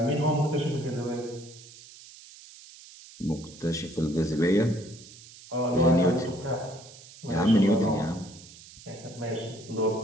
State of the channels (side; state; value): right; noise; hiss, 19 dB below the sound